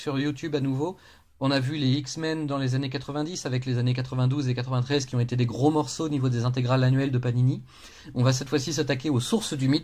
YouTube à nouveau. On a vu les X-Men dans les années 90 avec les années 92 et 93 qui ont été des gros morceaux au niveau des intégrales annuelles de Panini. On va cette fois-ci s'attaquer aux sources du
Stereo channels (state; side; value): identical; both; correlation 1.00